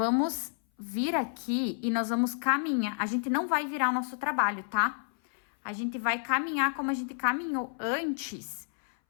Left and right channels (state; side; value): silent; right; 58 dB below the other